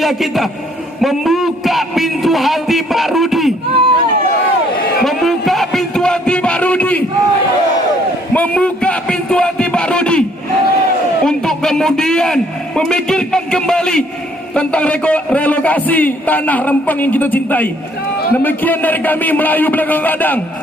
kita membuka pintu hati Pak Rudi, membuka pintu hati Pak Rudi, membuka pintu hati Pak Rudi untuk kemudian memikirkan kembali tentang relokasi tanah Rempang yang kita cintai. Demikian dari kami Melayu Belakang Kadang.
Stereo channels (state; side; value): normal; both; correlation 0.63